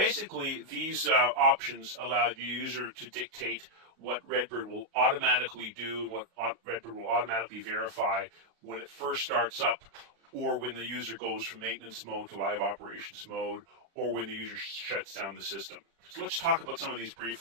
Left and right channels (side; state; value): left; late; 35 ms